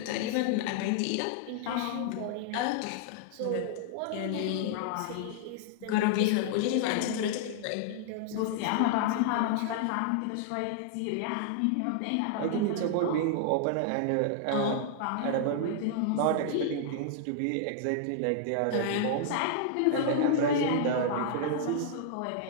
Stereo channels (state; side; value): different; both; correlation -0.01